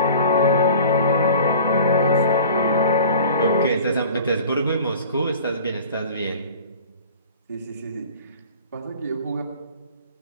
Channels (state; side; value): inverted; both; correlation -0.43